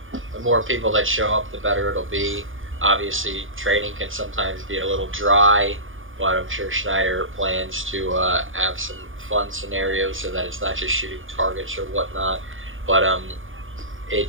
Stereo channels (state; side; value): late; left; 0.58 ms